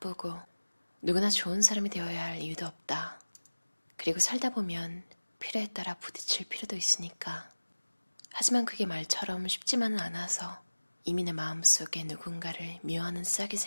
누구나 좋은 사람이 되어야 할 이유도 없다. 그리고 살다 보면 필요에 따라 부딪힐 필요도 있으니까. 하지만 그게 말처럼 쉽지만은 않아서 이미 내 마음속에 누군가를 미워하는 싹이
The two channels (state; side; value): inverted; both; correlation -1.00